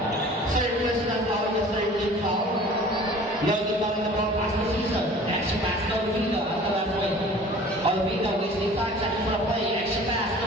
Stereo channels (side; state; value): both; normal; correlation 0.46